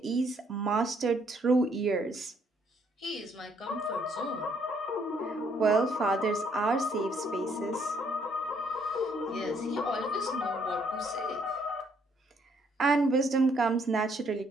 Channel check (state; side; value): normal; both; correlation 0.68